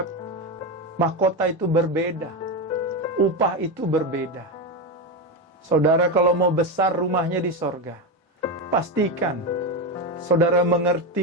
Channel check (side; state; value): both; normal; correlation 0.14